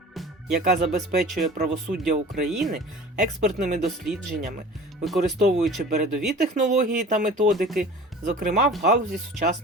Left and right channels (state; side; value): normal; both; correlation 0.41